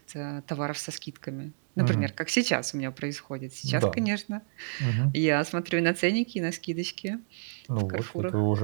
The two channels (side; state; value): left; silent; digital silence